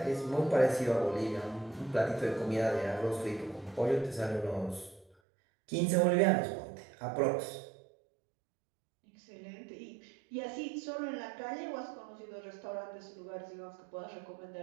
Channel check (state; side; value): drops out; left; at 5.2 s